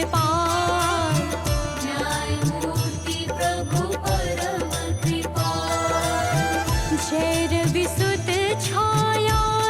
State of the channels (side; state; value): both; identical; correlation 1.00